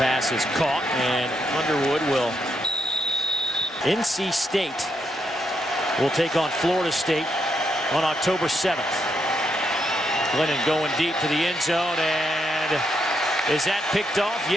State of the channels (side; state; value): both; normal; correlation 0.79